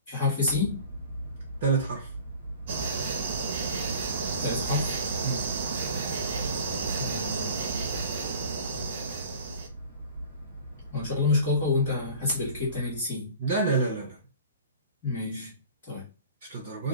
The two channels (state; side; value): inverted; both; correlation -0.45